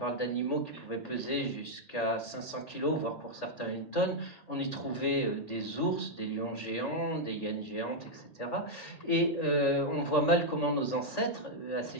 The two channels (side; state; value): right; late; 1.8 ms